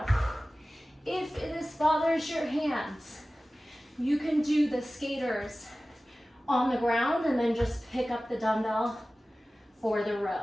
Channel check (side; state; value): both; normal; correlation 0.97